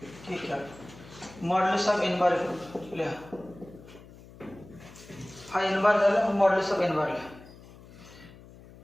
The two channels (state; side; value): noise; left; hum, 20 dB below the sound